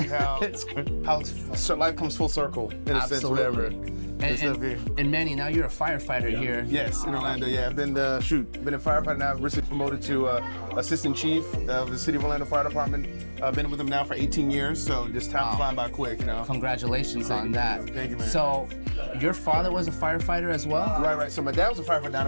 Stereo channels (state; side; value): inverted; both; correlation -1.00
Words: how life comes full circle in a sense, whatever. And Manny, now you're a firefighter here. Yes, in Orlando. Yeah, I've been a firefighter now. Recently promoted to assistant chief of the City of Orlando Fire Department. I've been with them now for 18 years, so just time flying by quick, you know. Congratulations on that. Thank you, man. So, your father was a firefighter as well? Right. So my dad was a firefighter down